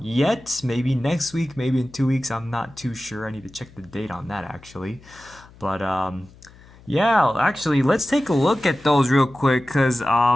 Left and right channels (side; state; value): left; noise; hum, 24 dB below the sound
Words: yet. Maybe next week, maybe in 2 weeks. I'm not too sure. I need to check the date on that actually. But yeah, actually, let's take a look at those real quick because